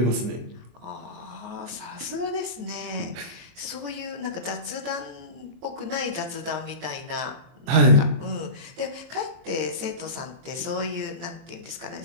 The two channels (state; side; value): late; left; 23 ms